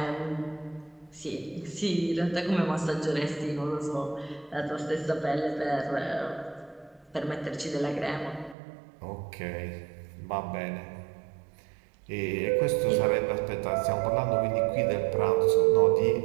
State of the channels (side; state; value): left; drops out; at 8.6 s